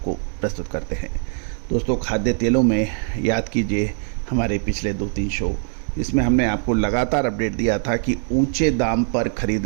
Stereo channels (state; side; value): silent; left; 56 dB below the other